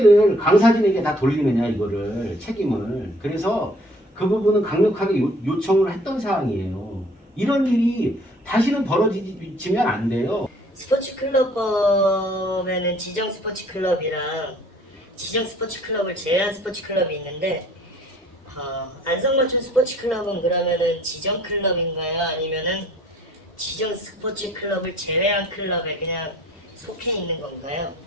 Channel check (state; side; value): normal; both; correlation 0.56